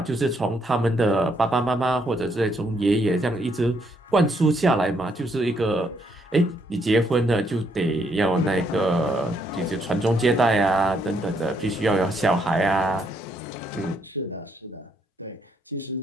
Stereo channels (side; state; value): both; normal; correlation 0.73